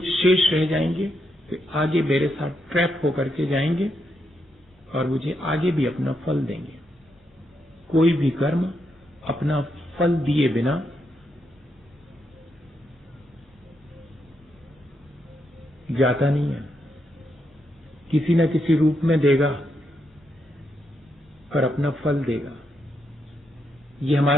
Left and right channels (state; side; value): normal; both; correlation 0.81